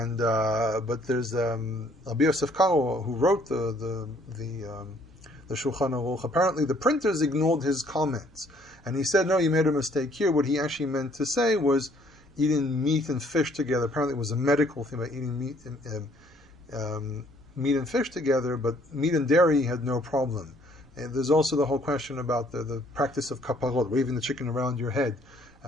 but there's Rabbi Yosef Karo, who wrote the Shulchan Aruch. Apparently, the printers ignored his comments, and he said, "No, you made a mistake here." What he actually meant to say was eating meat and fish together. Apparently, it was a medical thing about eating meat and fish together, but meat and dairy had no problem. And there's also the whole question about the practice of kaparot, waving the chicken around your head.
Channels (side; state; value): right; noise; rumble, 28 dB below the sound